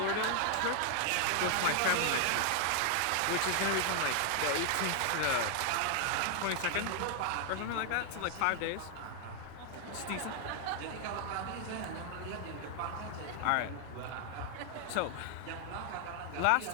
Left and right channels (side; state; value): both; different; correlation 0.00